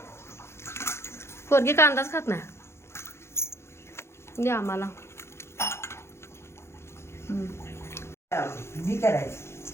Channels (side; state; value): right; late; 0.13 ms